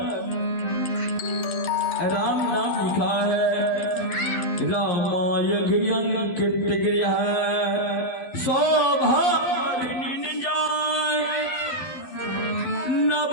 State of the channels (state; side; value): late; right; 12 ms